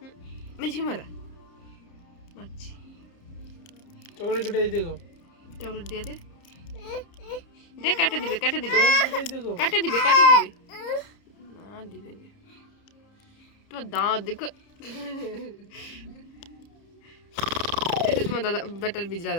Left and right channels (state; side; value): late; right; 30 ms